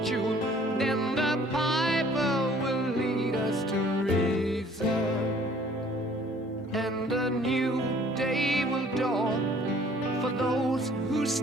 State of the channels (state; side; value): normal; both; correlation 0.56